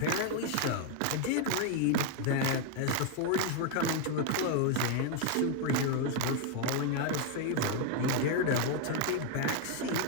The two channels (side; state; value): both; different; correlation 0.01